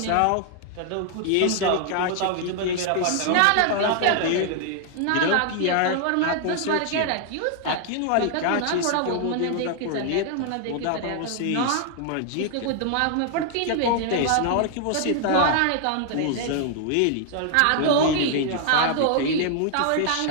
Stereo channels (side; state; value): both; different; correlation 0.00